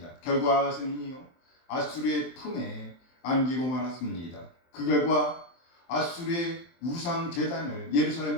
결과 아하스는요 아수리의 품에 안기고 말았습니다. 그 결과 아수리의 우상 제단을 예루살렘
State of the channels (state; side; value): late; right; 23 ms